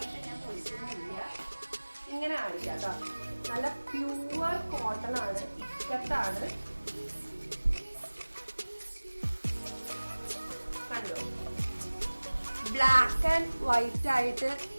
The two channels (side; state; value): both; inverted; correlation -1.00